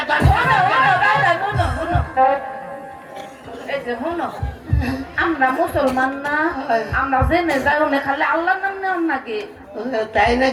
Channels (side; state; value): both; identical; correlation 1.00